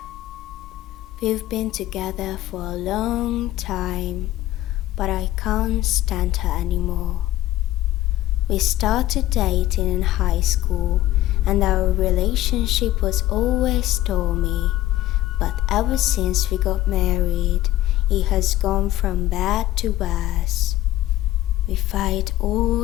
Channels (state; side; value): quieter; right; 15.1 dB